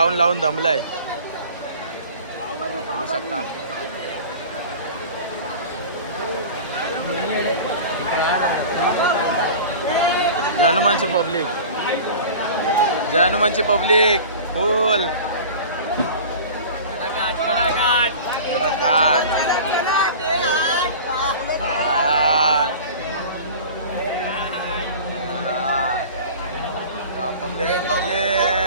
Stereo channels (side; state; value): both; inverted; correlation -0.38